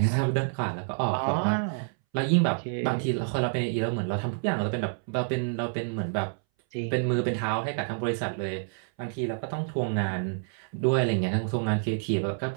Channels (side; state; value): left; silent; 59 dB below the other